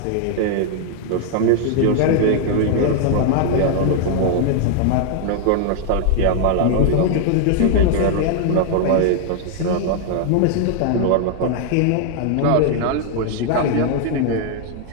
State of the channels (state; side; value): different; both; correlation 0.00